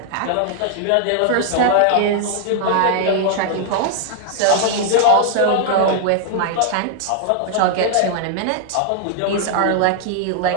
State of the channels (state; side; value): different; both; correlation 0.00